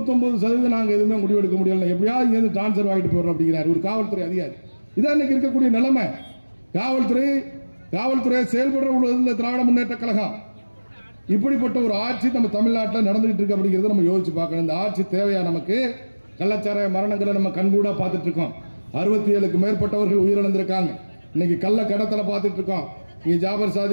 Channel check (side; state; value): both; inverted; correlation -1.00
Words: நாங்க எதுவுமே முடிவெடுக்க முடியல, எப்படியாவது இருந்து டிரான்ஸ்பர் வாங்கிட்டு போறோம் அப்படிங்கிறார் ஒரு காவல்துறை அதிகாரி. இதான் இன்னைக்கு இருக்கக்கூடிய நிலைமை. காவல்துறை செயல்படுற திராவிட முன்னேற்ற கழகம் இப்படிப்பட்ட ஒரு ஆட்சி நம்ம தமிழ்நாட்டில் நடந்துகிட்டு இருக்கு அப்படிங்கிறத நம்ம யோசிச்சு பார்க்கணும். இந்த ஆட்சி தேவையா நமக்கு? கள்ளச்சாராய மரணங்களை நம்ம கண்கூடா பார்த்துட்டு இருக்கோம். 67க்கு மேற்பட்டவர்கள் உயிரிழந்திருக்காங்க. இன்னைக்கு கள்ள கடத்தலை பார்த்துட்டு இருக்கோம். இங்க ஜாபர்